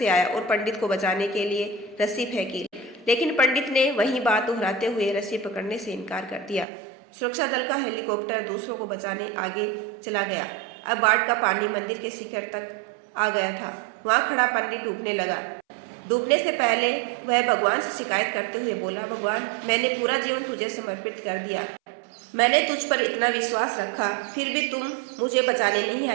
आया और पंडित को बचाने के लिए रस्सी फेंकी, लेकिन पंडित ने वही बात दोहराते हुए रस्सी पकड़ने से इनकार कर दिया। सुरक्षा दल का हेलीकॉप्टर दूसरों को बचाने आगे चला गया। अब बाढ़ का पानी मंदिर के शिखर तक आ गया था। वहां खड़ा पंडित डूबने लगा। डूबने से पहले वह भगवान से शिकायत करते हुए बोला, भगवान, मैंने पूरा जीवन तुझे समर्पित कर दिया। मैंने तुझ पर इतना विश्वास रखा, फिर भी तुम मुझे बचाने नहीं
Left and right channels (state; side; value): drops out; left; at 6.7 s